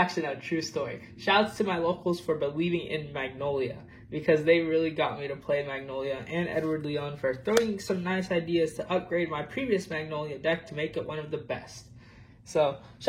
no, true story. Shouts to my locals for believing in Magnolia, because they really got me to play Magnolia, and Edward Leon for throwing some nice ideas to upgrade my previous Magnolia deck to make it one of the best. So,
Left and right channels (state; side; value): identical; both; correlation 1.00